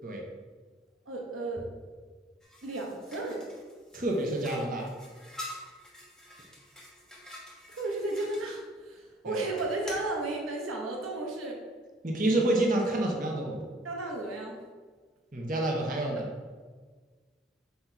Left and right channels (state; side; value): normal; both; correlation 0.54